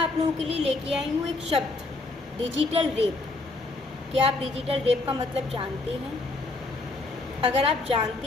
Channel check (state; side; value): quieter; right; 3.3 dB